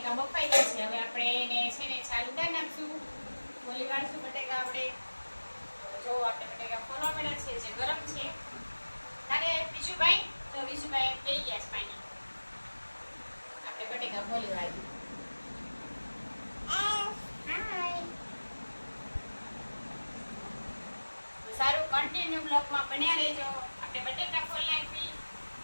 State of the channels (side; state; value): both; inverted; correlation -1.00